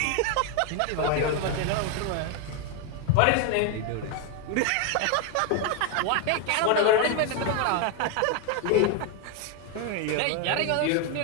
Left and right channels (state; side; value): different; both; correlation 0.01